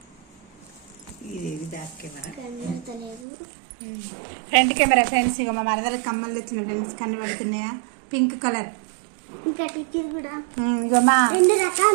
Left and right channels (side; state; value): left; drops out; at 3.2 s